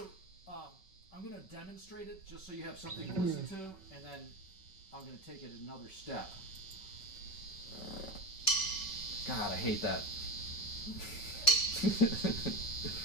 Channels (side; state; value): right; late; 5.3 ms